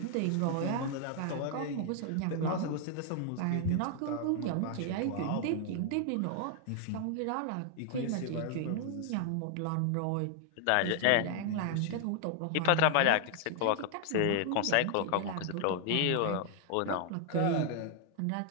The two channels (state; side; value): different; both; correlation 0.00